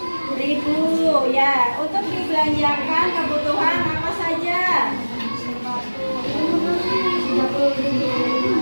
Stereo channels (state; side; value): inverted; both; correlation -1.00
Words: 600.000 ya. Untuk dibelanjakan kebutuhan apa saja?